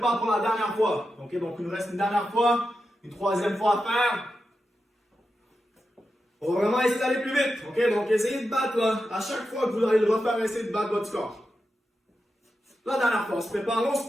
pour la dernière fois. OK, donc il nous reste une dernière fois, une troisième fois à faire. On va vraiment essayer d'aller plus vite. OK, donc essayez de battre là. À chaque fois que vous allez le refaire, essayez de battre votre score. La dernière fois, on se prépare, on se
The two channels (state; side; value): normal; both; correlation 0.89